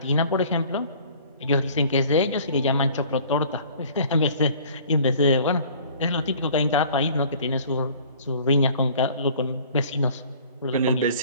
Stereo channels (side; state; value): both; inverted; correlation -0.51